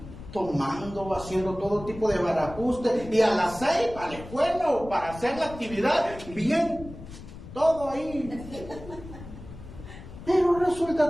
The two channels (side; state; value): left; noise; rumble, 14 dB below the sound